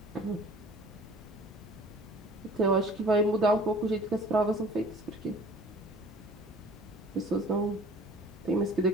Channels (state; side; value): normal; both; correlation 0.48